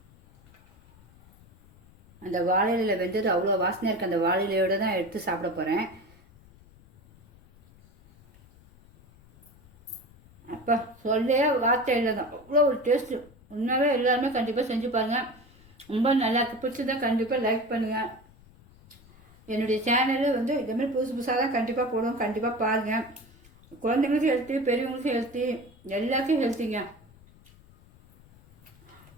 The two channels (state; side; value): noise; left; rumble, 26 dB below the sound